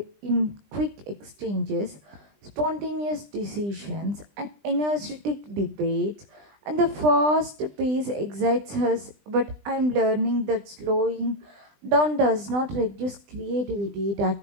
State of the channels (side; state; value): left; late; 20 ms